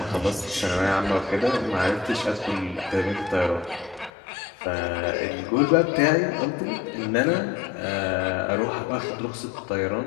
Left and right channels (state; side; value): drops out; right; at 4.1 s